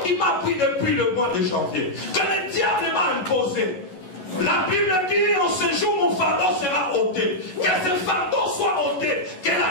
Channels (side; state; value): right; late; 11 ms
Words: qui m'a pris depuis le mois de janvier, que le diable m'a imposé, la Bible dit, en ce jour, mon fardeau sera ôté. Que ce fardeau soit ôté, que